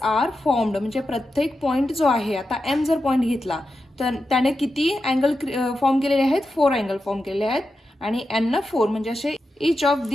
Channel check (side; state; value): both; normal; correlation 0.90